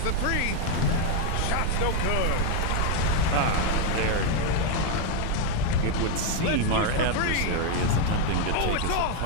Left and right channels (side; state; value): both; different; correlation 0.01